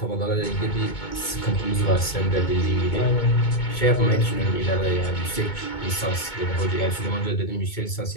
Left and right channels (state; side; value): late; right; 2.2 ms